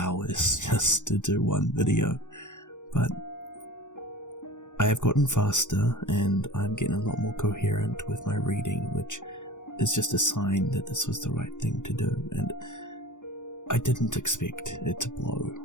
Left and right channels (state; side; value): late; right; 0.85 ms